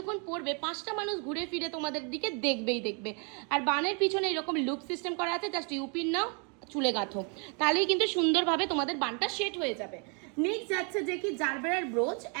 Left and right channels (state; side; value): quieter; left; 36.7 dB